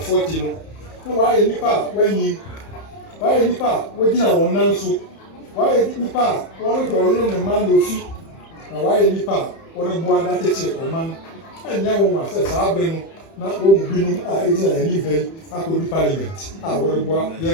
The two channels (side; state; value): right; late; 31 ms